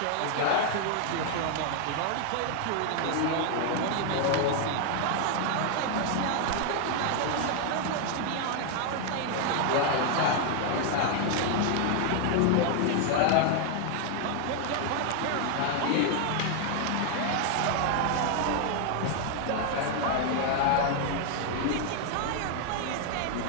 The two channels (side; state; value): both; different; correlation 0.00